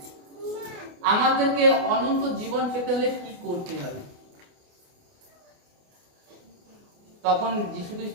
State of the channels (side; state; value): left; late; 28 ms